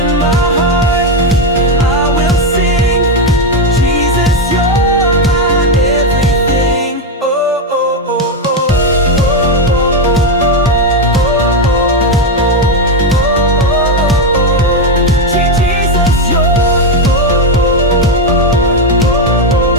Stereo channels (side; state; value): both; normal; correlation 0.07